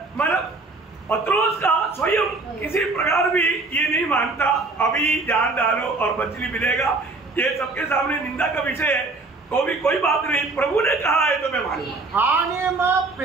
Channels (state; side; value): quieter; left; 3.6 dB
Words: मतलब पत्रोस का स्वयं किसी प्रकार भी ये नहीं मानता अभी जान डालो और मछली मिलेगा, ये सबके सामने निंदा का विषय है, तो भी कोई बात नहीं, प्रभु ने कहा है तो मैं मानूंगा. आणि मग